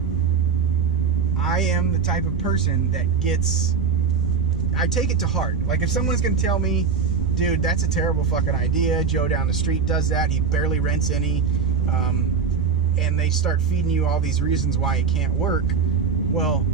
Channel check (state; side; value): quieter; left; 5.8 dB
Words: I am the type of person that I take it to heart. Like, if someone's going to tell me, dude, that's a terrible fucking idea, Joe down the street does that, he barely rents any, and they start feeding you all these reasons why it can't work, well,